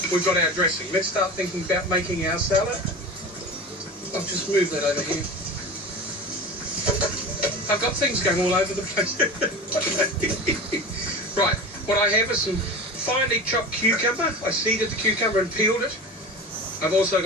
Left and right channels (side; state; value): both; normal; correlation 0.32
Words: we've got our dressing. Let's start thinking about making our salad. I'll just move that over here. I've got things going all over the place. Right, what I have is some finely chopped cucumber. I seeded the cucumber and peeled it. I've also